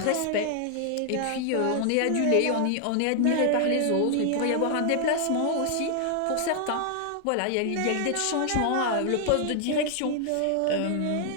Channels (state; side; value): different; both; correlation 0.00